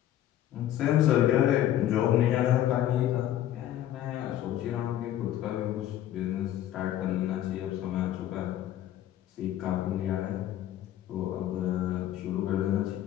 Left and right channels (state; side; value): quieter; right; 12.2 dB